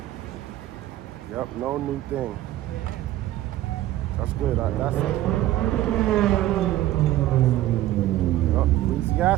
Yep, no new thing. Yeah. That's good. That's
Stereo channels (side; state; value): left; quieter; 14.6 dB